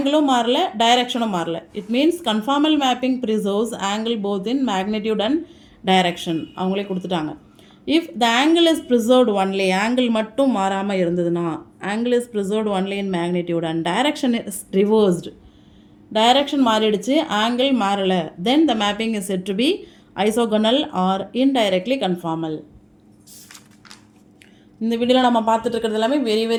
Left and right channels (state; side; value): identical; both; correlation 1.00